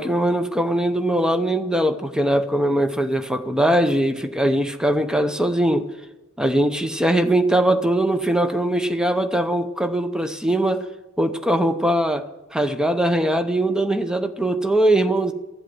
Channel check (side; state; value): both; normal; correlation 0.82